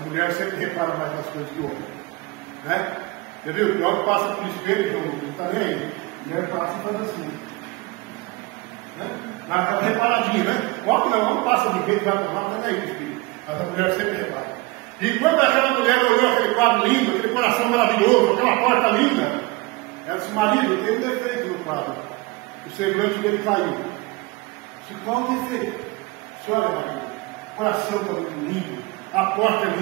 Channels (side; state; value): left; quieter; 23.2 dB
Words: mulher sempre repara mais nas coisas que o homem, né? Você viu? O homem passa por espelho, não está nem aí. A mulher passa e faz assim, né? Dá aquela reparadinha, né? O homem não, o homem passa de jeito, vai para lá, não está nem aí o espelho. Mas a mulher sempre repara. E quando aquela mulher olhou aquele quadro lindo, aquele coração maravilhoso, aquela porta linda, Ela disse: marido, tem um defeito no quadro. O semblante dele caiu. Disse: qual o defeito? Olha, marido, o coração está muito lindo, a porta